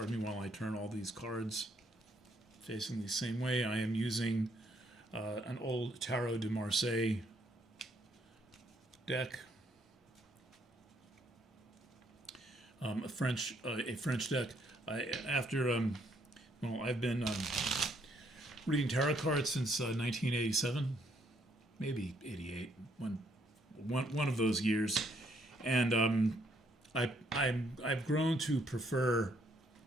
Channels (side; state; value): both; normal; correlation 0.70